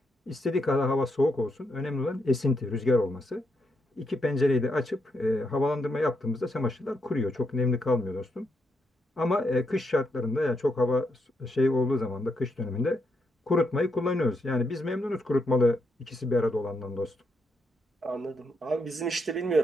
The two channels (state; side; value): normal; both; correlation 0.80